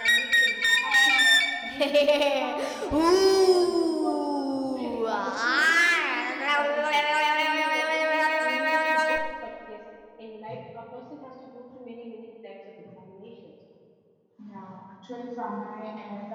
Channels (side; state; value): both; identical; correlation 1.00